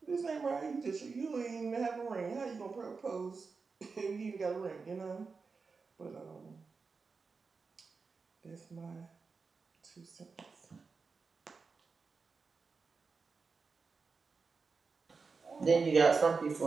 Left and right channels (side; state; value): left; quieter; 4.7 dB